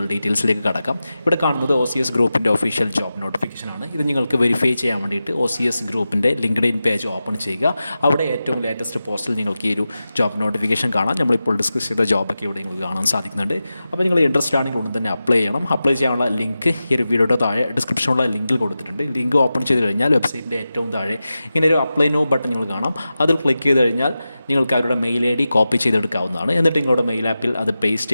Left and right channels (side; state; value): both; inverted; correlation -0.93